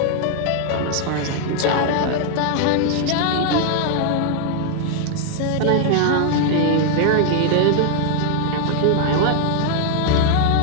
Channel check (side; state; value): both; different; correlation 0.00